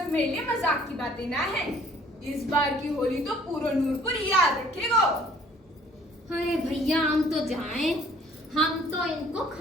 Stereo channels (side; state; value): both; normal; correlation 0.56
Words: मेरे लिए मजाक की बातें ना है। इस बार की होली तो पूरा नूरपुर याद रखेगा। अरे भैया, हम तो जाएं, हम तो इनको